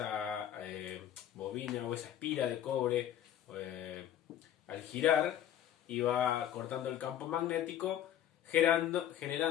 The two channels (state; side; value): quieter; right; 10.9 dB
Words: bobina o esa espira de cobre al girar iba cortando el campo magnético,